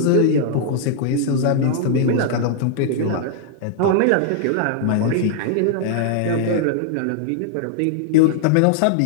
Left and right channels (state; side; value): different; both; correlation -0.01